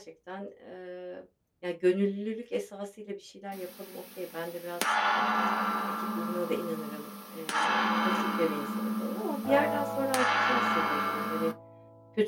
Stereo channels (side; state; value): both; identical; correlation 1.00